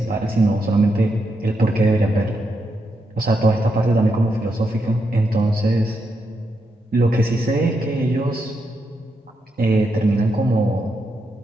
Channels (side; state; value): both; normal; correlation 0.83